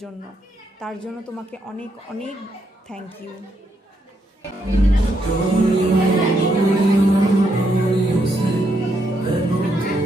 জন্য। তার জন্য তোমাকে অনেক অনেক থ্যাংক ইউ।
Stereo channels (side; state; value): both; normal; correlation 0.77